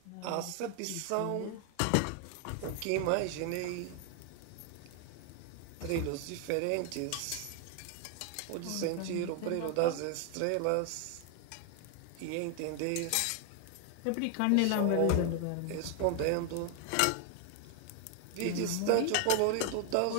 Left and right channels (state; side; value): different; both; correlation 0.01